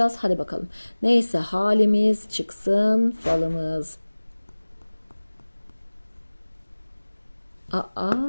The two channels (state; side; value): inverted; both; correlation -1.00